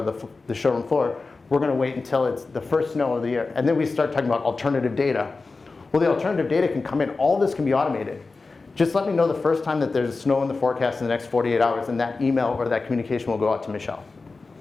the showroom floor. We're going to wait until it's the first snow of the year, and then we start talking about alternative data. Well, the alternative data can come in. All this can be automated. Just let me know the first time that there's snow in the forecast in the next 48 hours, and that email or that communication will go out to Michelle.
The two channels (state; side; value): quieter; right; 3.9 dB